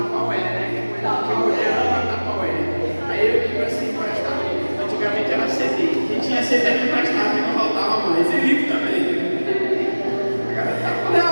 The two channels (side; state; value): both; inverted; correlation -1.00